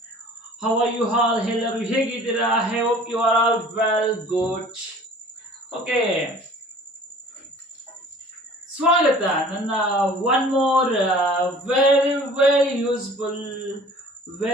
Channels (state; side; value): normal; both; correlation 0.48